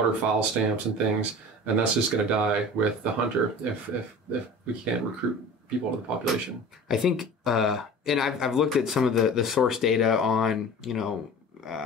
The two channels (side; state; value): both; normal; correlation 0.39